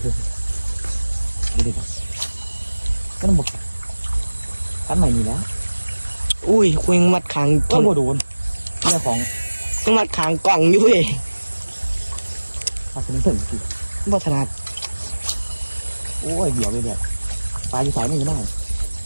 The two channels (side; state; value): both; inverted; correlation -1.00